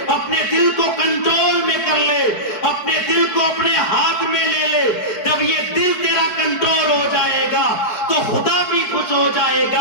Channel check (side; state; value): right; late; 4.6 ms